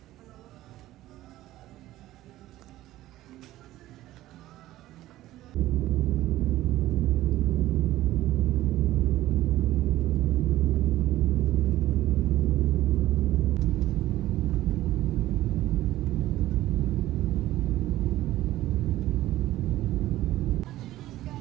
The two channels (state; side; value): quieter; left; 15.3 dB